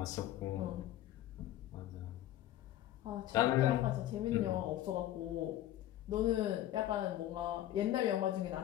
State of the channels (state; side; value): quieter; right; 13.5 dB